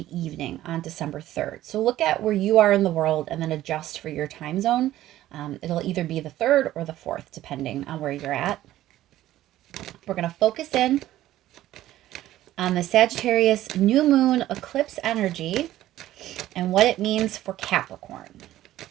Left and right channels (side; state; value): left; quieter; 14.1 dB